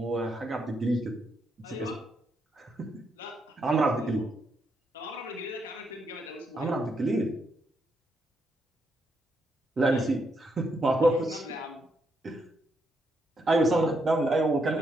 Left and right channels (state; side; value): normal; both; correlation 0.78